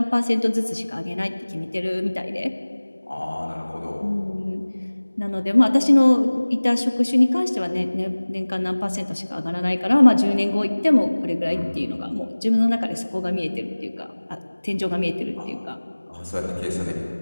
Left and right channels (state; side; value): inverted; both; correlation -1.00